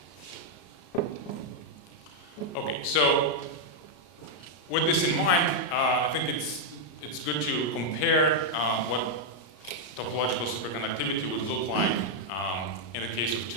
Okay, so with this in mind, I think it's good to compare what topological superconductivity would look like in the case of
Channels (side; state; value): right; late; 33 ms